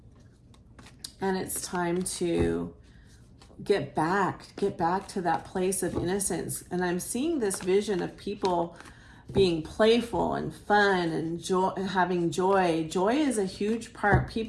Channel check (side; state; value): both; identical; correlation 1.00